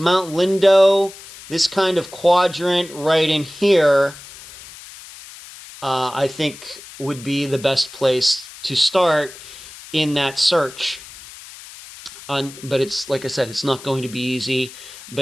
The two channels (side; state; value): left; noise; hiss, 17 dB below the sound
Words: Lindo, this kind of quadrant right in here, I think would be the best place to start in that search. But it's, like I said, it's not going to be easy,